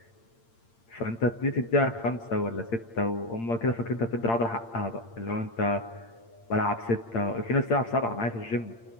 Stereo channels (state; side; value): late; right; 8.7 ms